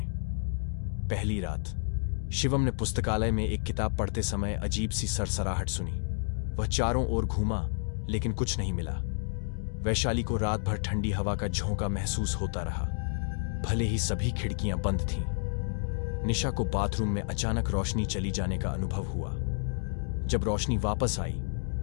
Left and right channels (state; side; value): silent; right; digital silence